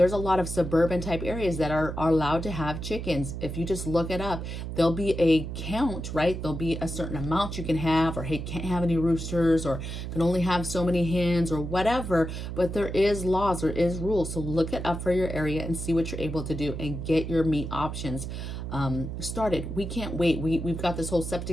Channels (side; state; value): right; noise; hum, 6 dB below the sound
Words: a lot of suburban type areas that are allowed to have chickens. If you just look it up, there'll be a count, right? There'll be a certain amount you can have, or hey, can't have any roosters, or can only have so many hens, or whatever, but there is laws, there is rules. So look it up for your area and see what you're able to do and get your meat options started. We can't wait. We've got this whole